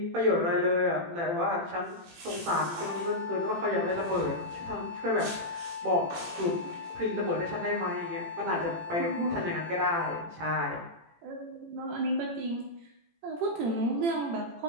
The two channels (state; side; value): late; left; 18 ms